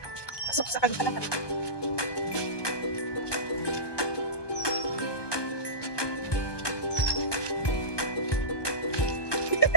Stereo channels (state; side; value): late; right; 1.2 ms